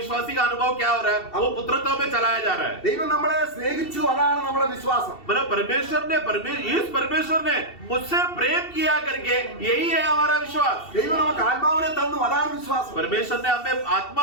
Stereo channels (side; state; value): right; late; 2.7 ms